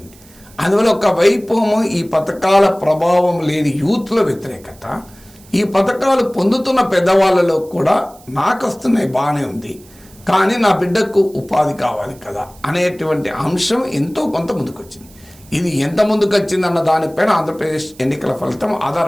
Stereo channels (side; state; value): right; noise; hiss, 25 dB below the sound